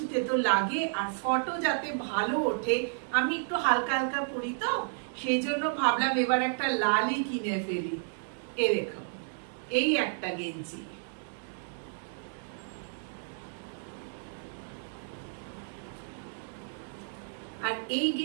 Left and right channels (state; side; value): silent; left; digital silence